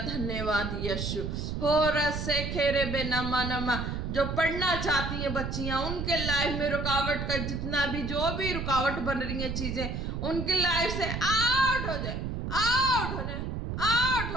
यीशु। हो रसे खेरे बे नमा नमा। जो पढ़ना चाहती हैं बच्चियां, उनके लाइफ में रुकावट का जितना भी जो भी रुकावट बन रही है चीजें, उनकी लाइफ से आउट हो जाए, आउट हो जाए, आउट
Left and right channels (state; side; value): noise; right; rumble, 3 dB below the sound